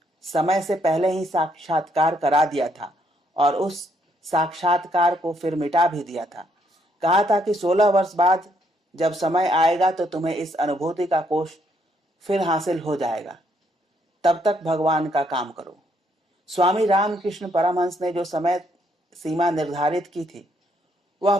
समय से पहले ही साक्षात्कार करा दिया था और उस साक्षात्कार को फिर मिटा भी दिया था। कहा था कि 16 वर्ष बाद जब समय आएगा तो तुम्हें इस अनुभूति का कोष फिर हासिल हो जाएगा। तब तक भगवान का काम करो। स्वामी रामकृष्ण परमहंस ने जो समय सीमा निर्धारित की थी वह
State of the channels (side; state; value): both; normal; correlation 0.72